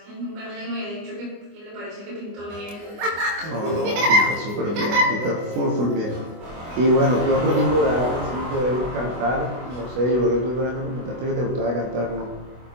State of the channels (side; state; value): left; late; 24 ms